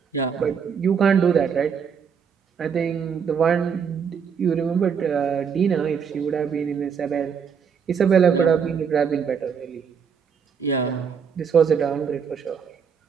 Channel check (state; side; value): quieter; left; 6.8 dB